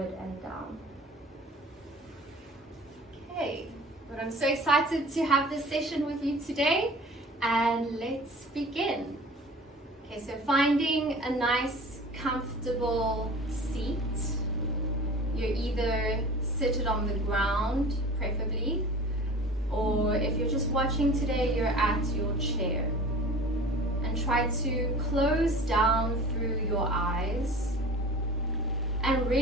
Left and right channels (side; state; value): both; normal; correlation 0.41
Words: and down. Okay, but I'm so excited to have this session with you today, and let's begin. Okay, so finding a nice, comfortable seat. You're either seated on the ground, preferably, or if you're just watching today, you're at your chair. And try to close down through your eyes and